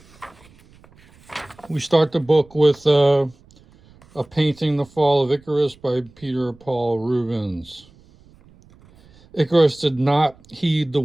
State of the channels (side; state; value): right; noise; rumble, 28 dB below the sound